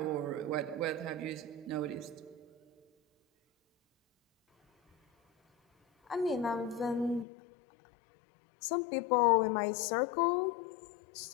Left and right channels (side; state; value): right; drops out; at 7.2 s